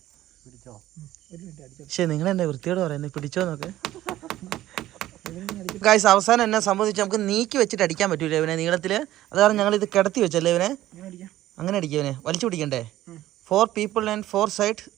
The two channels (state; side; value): quieter; left; 14.4 dB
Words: പക്ഷെ നിങ്ങൾ എന്നെ വൃത്തിയോട് പറയുന്നത് പിടിച്ചോ നോക്ക്. ഗൈസ് അവസാനം എന്നെ സംബന്ധിച്ച് നമുക്ക് നീക്കി വെച്ചിട്ട് അടിക്കാൻ പറ്റൂല ഇവനെ നീളത്തില്. അത് കാരണം ഞങ്ങൾ ഇത് കിടത്തി വെച്ചല്ലേ ഇവനെ. അങ്ങനെ അടിക്കുക ഇവനെ. വലിച്ചു പിടിക്കണ്ടേ? 4 people and 4 sides